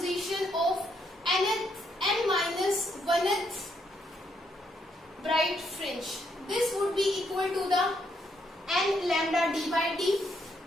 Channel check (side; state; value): both; normal; correlation 0.75